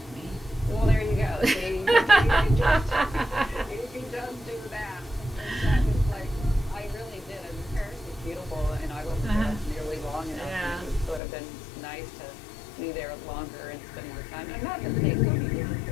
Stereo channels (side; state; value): right; drops out; at 11.2 s